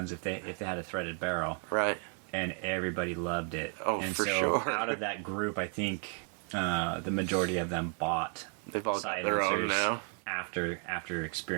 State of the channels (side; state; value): left; quieter; 39.8 dB